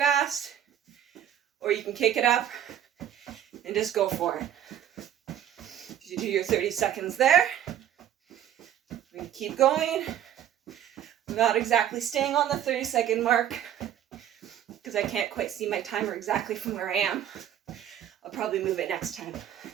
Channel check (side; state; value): left; quieter; 10.5 dB